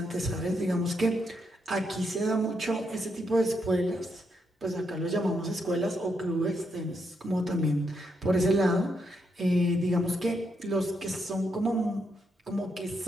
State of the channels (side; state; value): both; normal; correlation 0.79